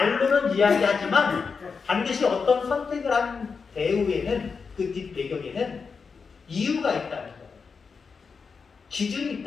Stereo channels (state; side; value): quieter; right; 5.3 dB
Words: 이야기하지만 반드시 어떤 선택을 한 배후에는 그 뒷배경에는 이유가 있다는 거예요. 기준이